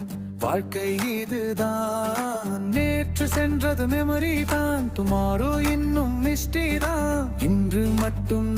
வாழ்க்கை இதுதான். நேற்று சென்றது மெமரி தான், டுமாரோ இன்னும் மிஸ்டி தான். இன்று மட்டும்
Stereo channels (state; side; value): identical; both; correlation 1.00